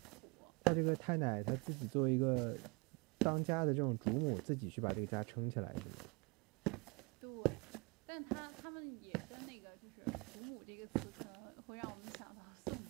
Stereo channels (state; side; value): quieter; left; 29.3 dB